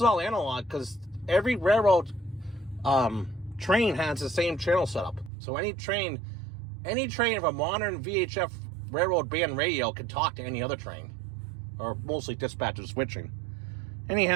all analog, because every railroad train has the same channel setup. So any train of a modern VHF railroad band radio can talk to any other train, or mostly dispatchers switching.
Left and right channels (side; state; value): left; drops out; at 5.3 s